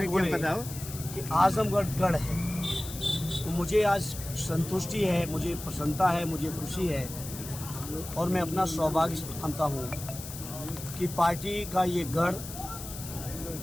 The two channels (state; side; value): noise; left; hiss, 11 dB below the sound